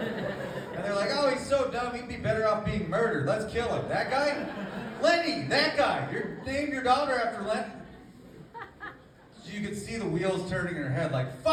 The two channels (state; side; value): identical; both; correlation 1.00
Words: they're like, oh, he's so dumb, he'd be better off being murdered. Let's kill him. That guy? Lenny, that guy. You named your daughter after Lenny. So you could see the wheels turning in her head like,